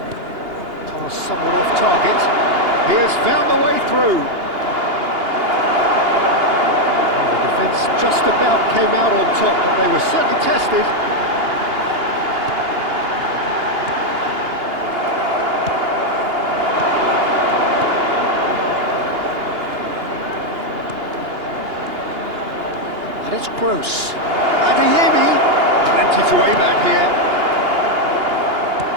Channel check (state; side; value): late; left; 2.8 ms